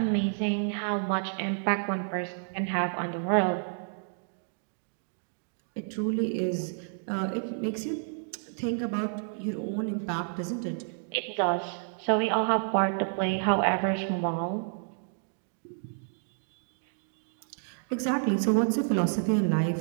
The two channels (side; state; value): left; silent; digital silence